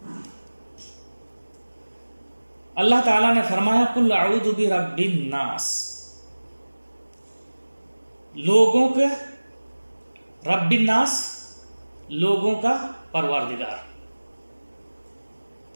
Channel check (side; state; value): both; inverted; correlation -1.00